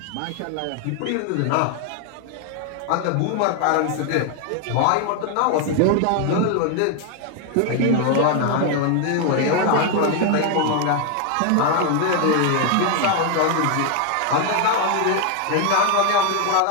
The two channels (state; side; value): different; both; correlation 0.01